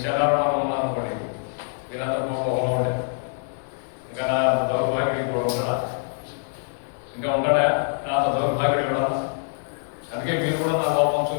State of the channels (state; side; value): silent; right; digital silence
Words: చంద్రబాబు ఉన్నాను అనుకోండి, వీళ్ళందరూ కొండ ఉండే, ఇంకా నా దౌర్భాగ్యుడికి కూడా ఉంటాడా? ఇంకా ఉంటాడా నాతో దౌర్భాగ్యుడు ఎవడన్నా? అందుకే మీరు కూడా నా లోపం